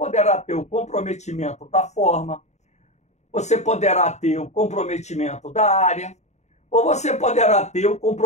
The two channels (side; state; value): right; late; 0.33 ms